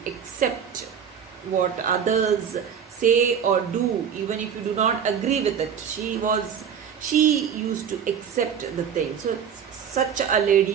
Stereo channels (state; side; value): quieter; left; 7.8 dB